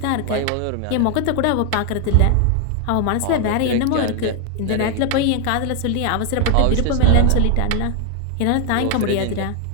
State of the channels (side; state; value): both; different; correlation 0.00